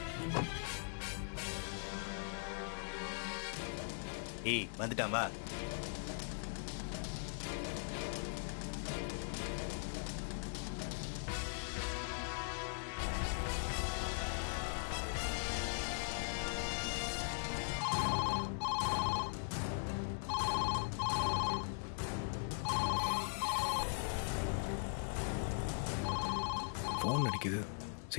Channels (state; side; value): silent; right; digital silence